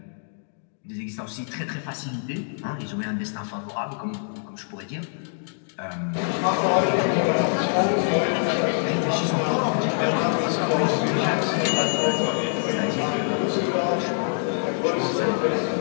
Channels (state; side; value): silent; right; digital silence